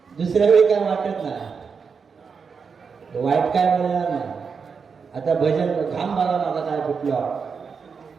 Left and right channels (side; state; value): left; quieter; 5.7 dB